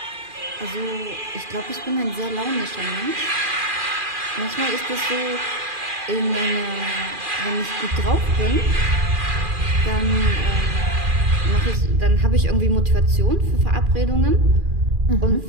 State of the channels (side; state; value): left; late; 2.4 ms